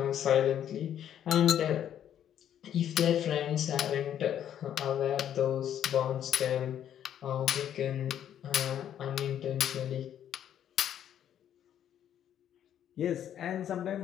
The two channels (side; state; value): right; quieter; 10.2 dB